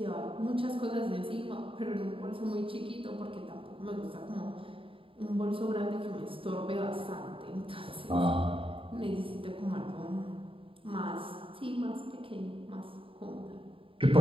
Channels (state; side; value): late; left; 0.26 ms